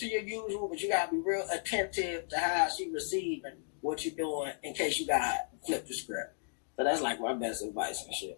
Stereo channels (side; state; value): right; silent; digital silence